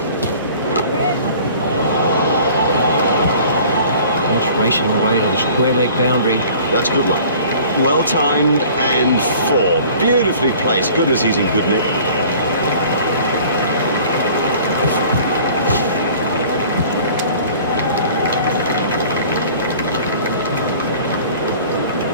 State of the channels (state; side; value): inverted; both; correlation -0.48